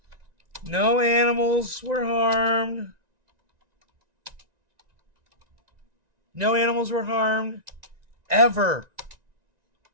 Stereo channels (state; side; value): late; left; 1.9 ms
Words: no animals were harmed. No animals were harmed ever